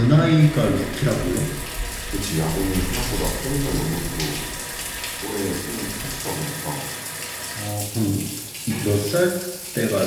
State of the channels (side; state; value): both; identical; correlation 1.00